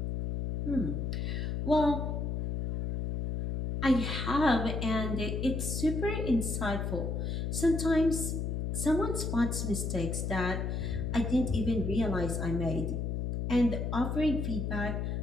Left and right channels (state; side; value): noise; left; hum, 1 dB below the sound